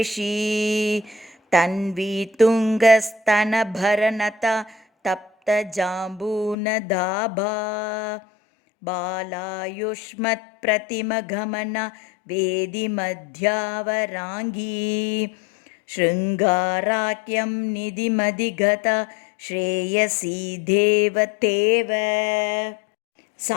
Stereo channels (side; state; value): right; drops out; at 6.6 s